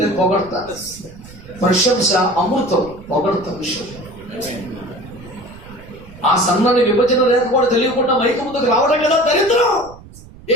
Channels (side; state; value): right; noise; rumble, 20 dB below the sound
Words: పొగడతా. ప్రశంస అమృతం, పొగడతా విషయం. ఆ సన్నాన్ని విభజన రేఖ కూడా తెలియకుండా మైక ముందుకు రావడం కదా దరిద్రం.